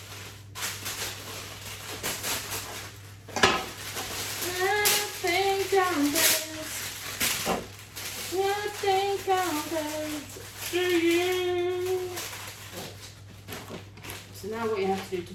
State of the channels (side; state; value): both; identical; correlation 1.00